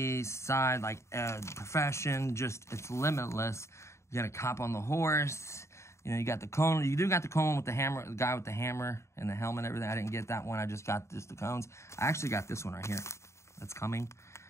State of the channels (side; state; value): right; late; 0.14 ms